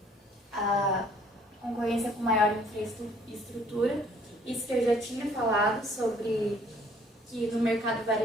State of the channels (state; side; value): normal; both; correlation 0.59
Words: maior infraestrutura. Isso que eu já tinha falado sobre que no mercado